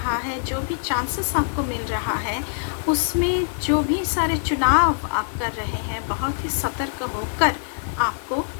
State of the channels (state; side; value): silent; right; 59 dB below the other